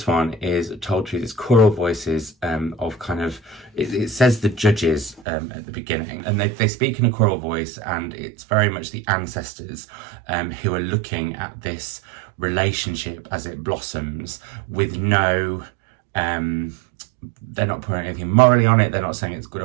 one is told through these choral voices of kind of, it says the judges at the beginning, and they speak in a choral voice, and it's very much the ancestors who are looking at this relationship as it blossoms with no... they're not putting anything morally on it. They're not saying it's good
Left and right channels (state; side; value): drops out; left; at 5.2 s